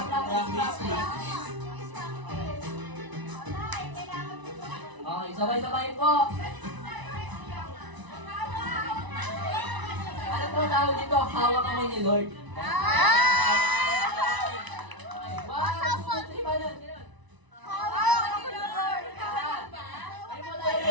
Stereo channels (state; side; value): late; left; 1.0 ms